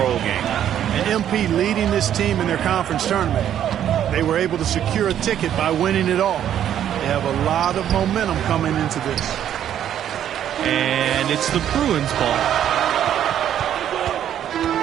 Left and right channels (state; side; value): quieter; left; 10.4 dB